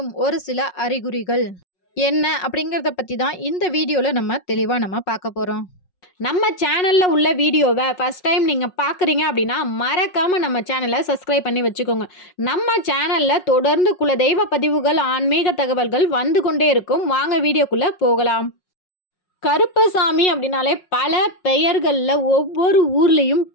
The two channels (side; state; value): right; late; 5.5 ms